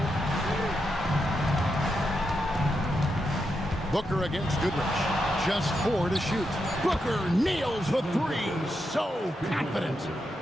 Booker against Goodrich. Just 4 to shoot. Booker nails the 3. So confident.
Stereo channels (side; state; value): both; normal; correlation 0.85